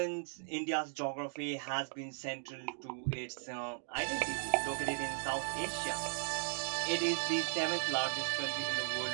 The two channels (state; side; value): silent; left; digital silence